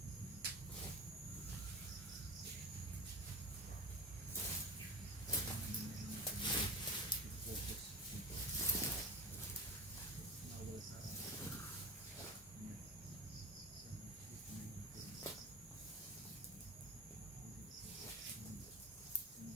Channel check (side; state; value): both; normal; correlation 0.28